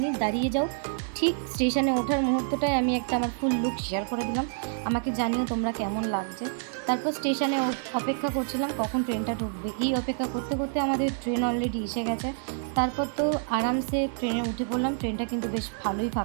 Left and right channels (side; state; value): left; silent; digital silence